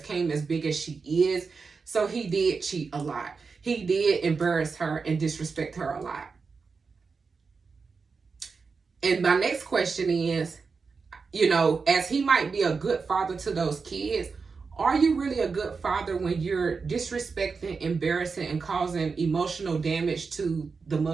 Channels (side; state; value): left; quieter; 4.9 dB